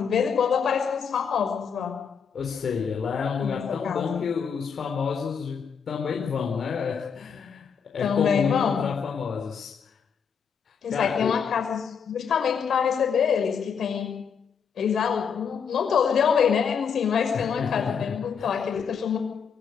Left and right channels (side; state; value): right; quieter; 6.7 dB